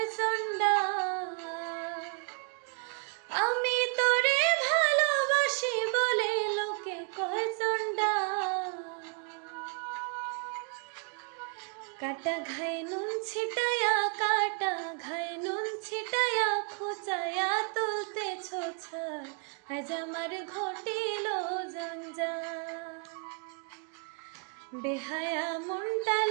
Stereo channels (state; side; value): quieter; left; 37.5 dB